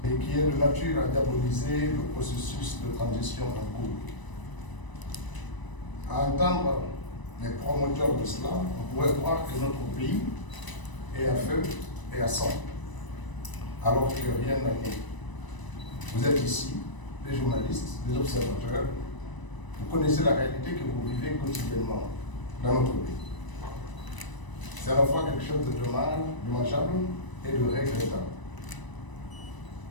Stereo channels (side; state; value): right; late; 1.0 ms